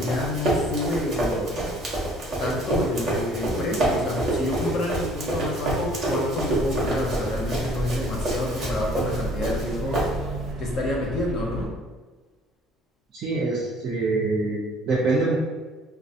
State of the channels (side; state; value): both; normal; correlation 0.56